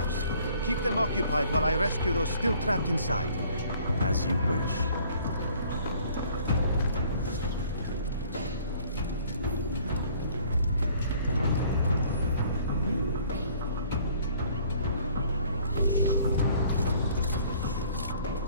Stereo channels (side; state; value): both; inverted; correlation -0.57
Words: Keep them occupied while I rescue those still trapped inside. As you wish.